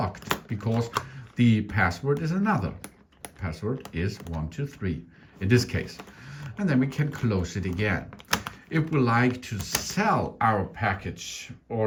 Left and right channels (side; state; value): both; identical; correlation 1.00